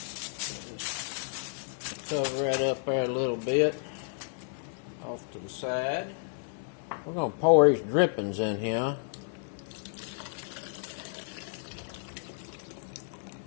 Just cover that up there a little bit off to the side. We're going to pour these drippings in here.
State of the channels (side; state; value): right; silent; 57 dB below the other